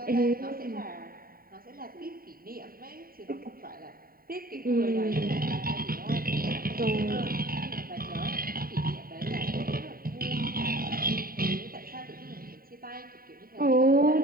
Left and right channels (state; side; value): late; left; 0.43 ms